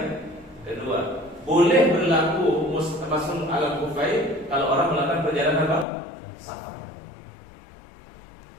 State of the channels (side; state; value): right; drops out; at 5.9 s